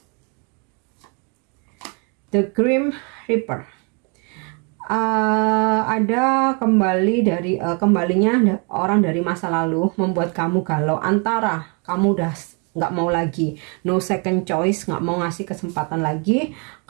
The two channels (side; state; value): left; quieter; 34.9 dB